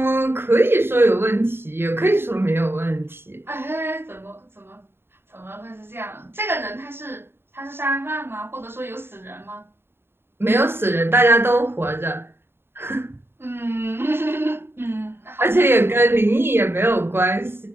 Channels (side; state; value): left; late; 0.11 ms